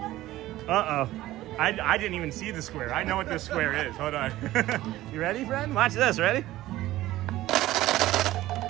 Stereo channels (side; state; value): left; quieter; 15.8 dB